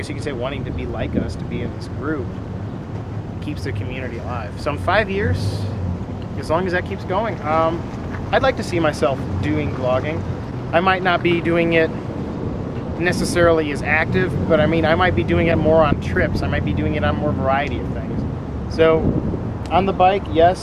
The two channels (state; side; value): identical; both; correlation 1.00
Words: you could say wanting to be like us, to be in this group, keeps the community alive. So in 5 years, as long as that keeps going, I'd like to see myself doing vlogging. I might not be doing it necessarily as active, but I mean, I might be doing it more on trips. I might be doing it on more variety of things. So on the bike,